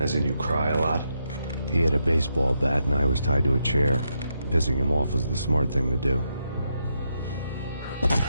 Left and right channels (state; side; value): inverted; both; correlation -0.82